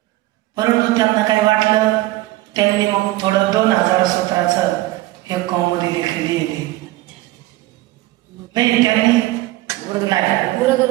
परंतु त्यांना काय वाटलं, त्यांनी मग थोडं 2000 सूत्राचं एक कौमुदी लिहिली नाही। त्यांनी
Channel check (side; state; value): left; quieter; 17.8 dB